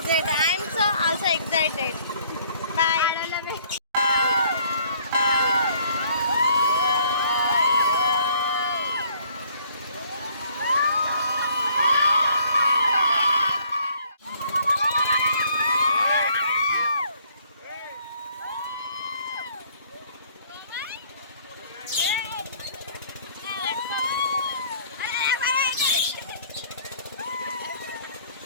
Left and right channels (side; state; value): both; inverted; correlation -0.61